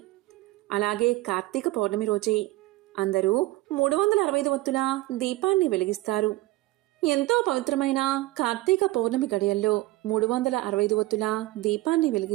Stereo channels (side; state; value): left; quieter; 18.5 dB